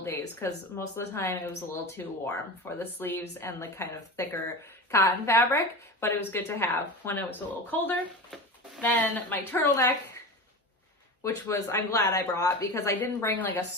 days because most of the time it was a little too warm for the sleeves and the kind of thicker cotton fabric, but it was good to have when it was a little colder. Then my turtleneck, which was, I'm glad I brought because I didn't bring like a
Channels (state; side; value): normal; both; correlation 0.28